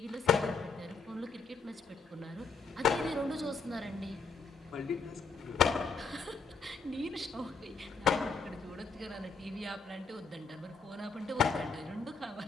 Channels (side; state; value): right; quieter; 4.8 dB